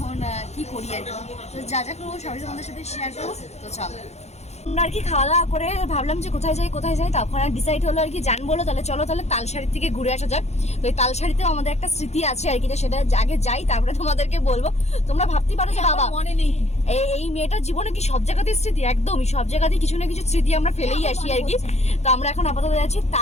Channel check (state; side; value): late; right; 0.32 ms